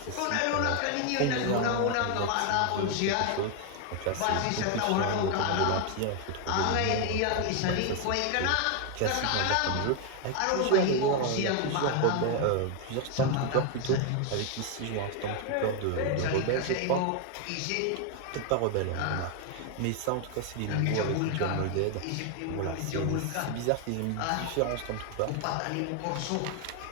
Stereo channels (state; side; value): different; both; correlation 0.01